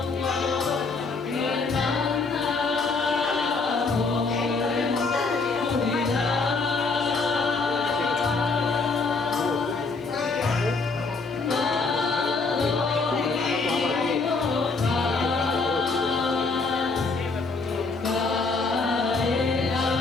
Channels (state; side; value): quieter; right; 4.1 dB